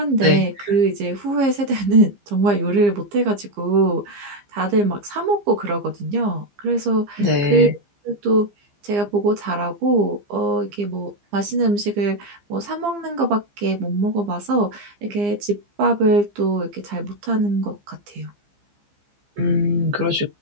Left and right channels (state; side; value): late; left; 15 ms